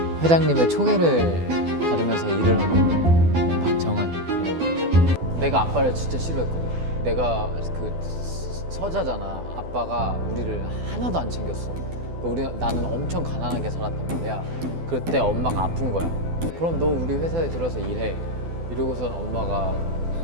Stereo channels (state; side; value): late; left; 12 ms